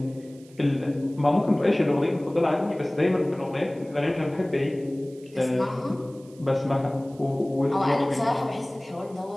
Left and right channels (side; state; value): right; noise; hiss, 27 dB below the sound